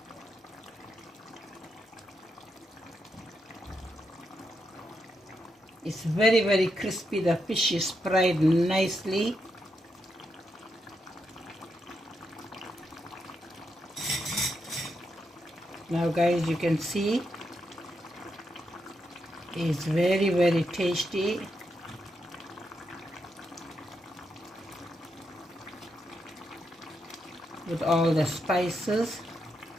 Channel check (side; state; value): both; normal; correlation 0.83